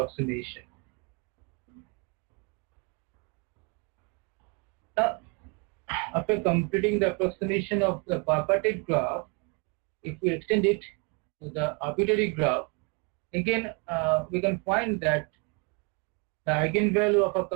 Now, after completing the approximation of the bipartite graph, if we extend it to the arbitrary graph, again we can find that the eigenvalue of a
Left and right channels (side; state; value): left; quieter; 31.4 dB